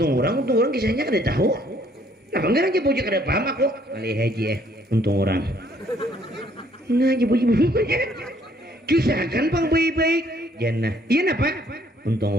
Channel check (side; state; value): both; normal; correlation 0.64